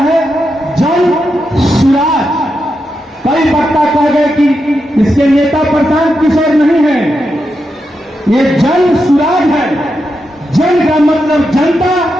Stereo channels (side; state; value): both; normal; correlation 0.86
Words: जन सूराज। कई वक्ता कह गए कि इसके नेता प्रशांत किशोर नहीं है। ये जन सूराज है। जन का मतलब जनता,